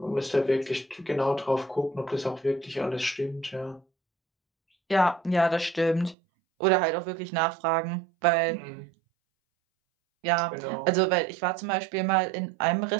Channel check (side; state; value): left; drops out; at 6.2 s